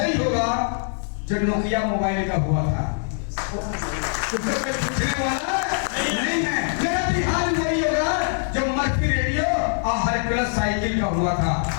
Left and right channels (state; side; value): silent; right; digital silence